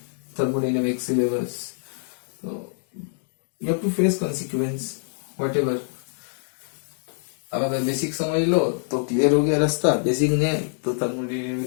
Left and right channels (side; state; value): right; silent; digital silence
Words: thermodynamics syllabus. So you have to face consequence whatever. अब अगर basic समझ लो तो क्लियर हो गया रास्ता, बेसिक नहीं तो